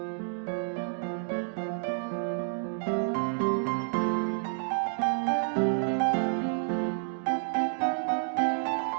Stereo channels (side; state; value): left; silent; digital silence